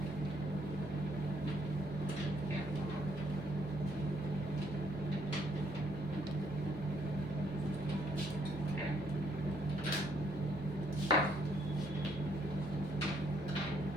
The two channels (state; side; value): noise; left; rumble, 19 dB below the sound